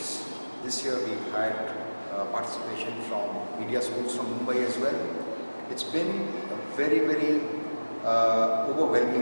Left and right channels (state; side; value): inverted; both; correlation -1.00